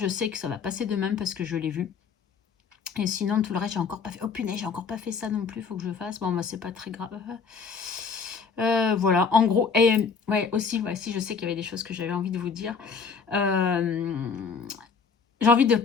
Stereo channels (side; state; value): right; quieter; 5.6 dB